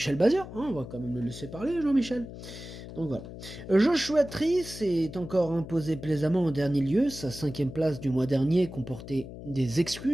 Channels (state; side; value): noise; left; hum, 12 dB below the sound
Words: Bazir, on va quand même le laisser parler, Jean-Michel. Donc voilà. Joshua Tree s'est encore imposé plaisamment en dernier lieu. Sa 5e place du mois dernier comportait des